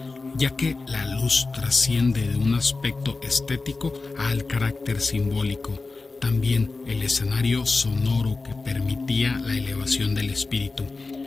ya que la luz trasciende de un aspecto estético al carácter simbólico. También el escenario sonoro que permitía la elevación del espíritu,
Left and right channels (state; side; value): quieter; right; 3.8 dB